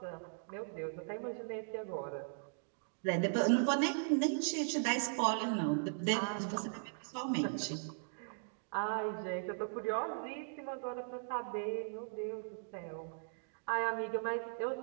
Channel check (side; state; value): left; silent; digital silence